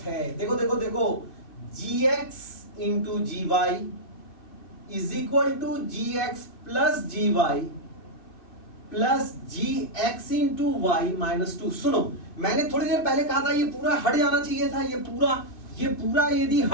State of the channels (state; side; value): late; right; 2.5 ms